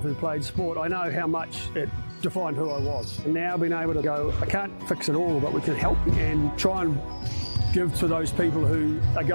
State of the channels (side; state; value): both; inverted; correlation -1.00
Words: who played sport, I know how much it defined who I was. And now being able to go, I can't fix it all, but we can help and try and give to those people who are